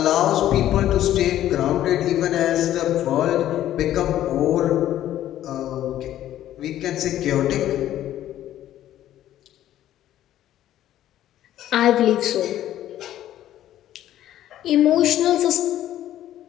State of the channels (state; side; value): quieter; right; 12.5 dB